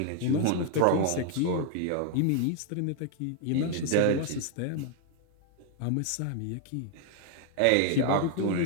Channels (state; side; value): different; both; correlation 0.00